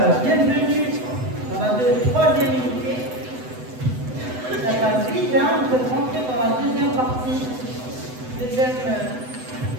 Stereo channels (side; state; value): left; late; 7.9 ms